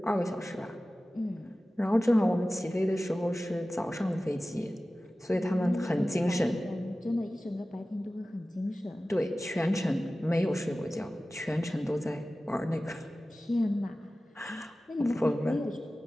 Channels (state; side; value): normal; both; correlation 0.96